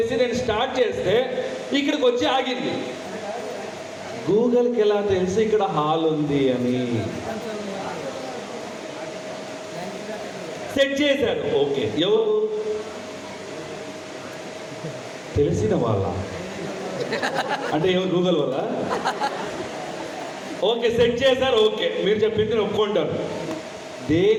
నేను స్టార్ట్ చేస్తే ఇక్కడికి వచ్చి ఆగింది. గూగుల్కి ఎలా తెలిసి ఇక్కడ హాల్ ఉంది అని? సెట్ చేశారు. ఓకే, ఎవరు? తెలిసిన వాళ్ళ? అంటే ఎవరు? గూగుల్ వల్ల? ఓకే, సెట్ చేశారు. ఓకే, మీరు చెప్పింది ఒప్పుకుంటారు.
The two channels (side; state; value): both; identical; correlation 1.00